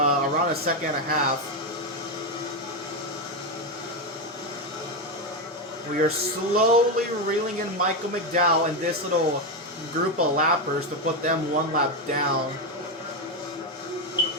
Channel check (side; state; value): both; normal; correlation 0.09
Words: a second and a half. We are slowly reeling in Michael McDowell and this little group of lappers to put them one lap down.